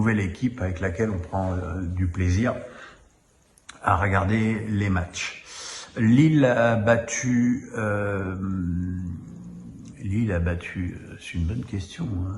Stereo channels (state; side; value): identical; both; correlation 1.00